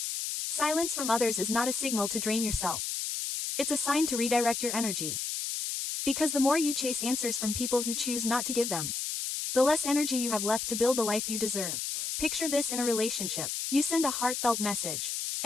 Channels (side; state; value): left; noise; hiss, 3 dB below the sound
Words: Silence from others is not a signal to drain yourself. It's a sign to redirect your energy. Because the more you chase answers from people who choose not to give them, the less energy you have left to build the life you deserve. Picture this in a relationship. You send a heartfelt message,